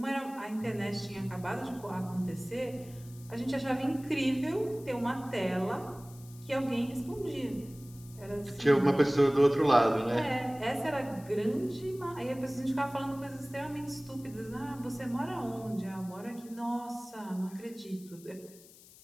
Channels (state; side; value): noise; left; hiss, 22 dB below the sound